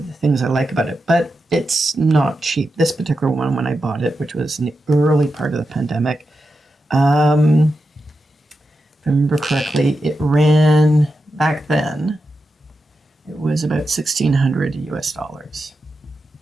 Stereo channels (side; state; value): both; normal; correlation 0.89